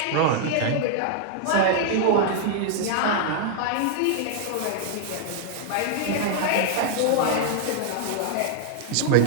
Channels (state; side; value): different; both; correlation -0.01